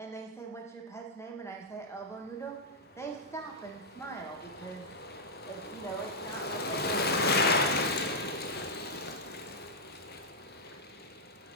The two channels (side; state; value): both; normal; correlation -0.06